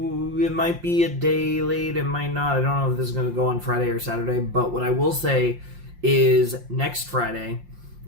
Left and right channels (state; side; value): late; left; 5.7 ms